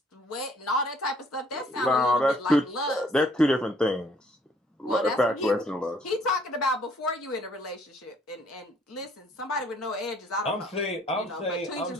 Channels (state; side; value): normal; both; correlation 0.62